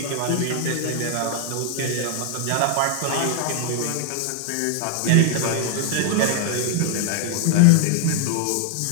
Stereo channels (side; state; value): both; different; correlation 0.00